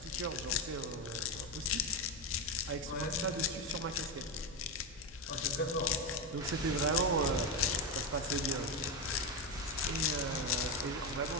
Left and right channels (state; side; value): normal; both; correlation 0.11